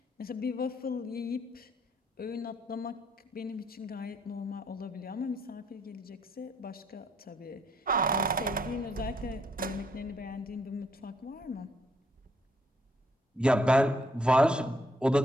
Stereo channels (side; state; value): both; normal; correlation 0.69